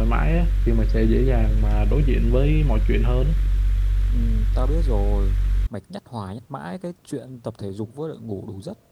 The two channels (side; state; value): both; identical; correlation 1.00